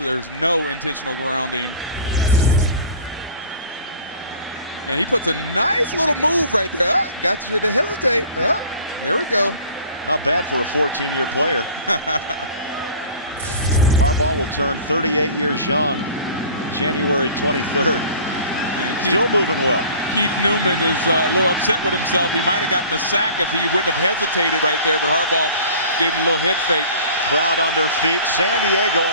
no intentional grounding. And he puts a nice little move right there. Got you to hesitate. There we go. Not bad for a 14-year player. Harbaugh will turn 38 years young January 23rd. And still moving well. Keith Newman is a little upset with himself. He might have gotten a sack if he wouldn't have hesitated right there, but Harbaugh gave him a little head fake. Crowd on their feet. San Diego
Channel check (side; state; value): both; inverted; correlation -0.45